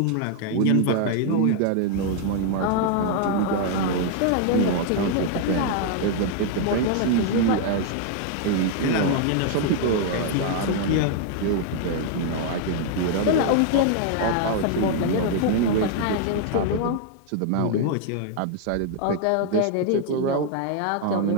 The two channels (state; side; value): different; both; correlation 0.00